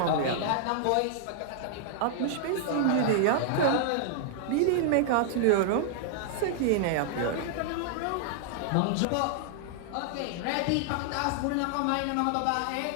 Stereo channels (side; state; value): both; different; correlation -0.01